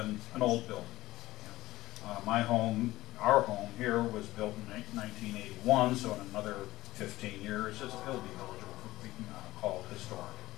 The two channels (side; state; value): right; quieter; 17.2 dB